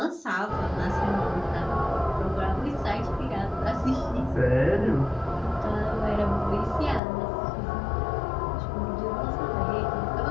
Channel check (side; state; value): right; drops out; at 7.0 s